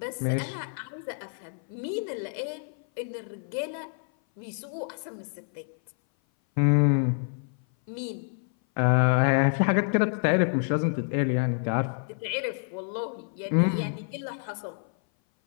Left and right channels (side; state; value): right; silent; 57 dB below the other